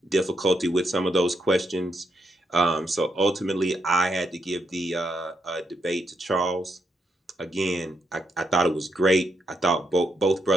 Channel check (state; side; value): normal; both; correlation 0.79